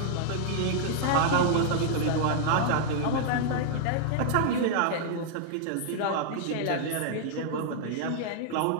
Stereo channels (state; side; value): different; both; correlation -0.01